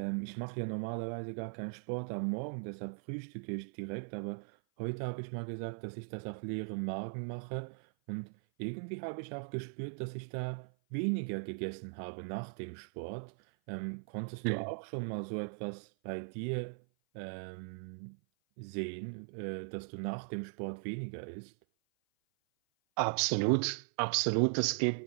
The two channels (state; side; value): silent; left; 52 dB below the other